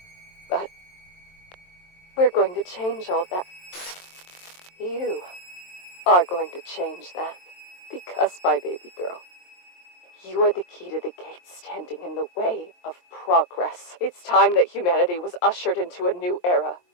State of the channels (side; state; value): right; late; 23 ms